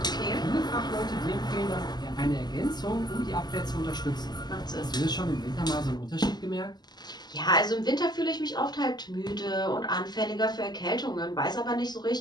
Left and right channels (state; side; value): late; right; 0.20 ms